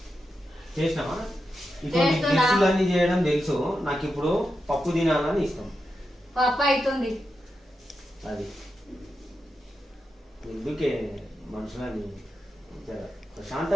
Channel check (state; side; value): normal; both; correlation 0.88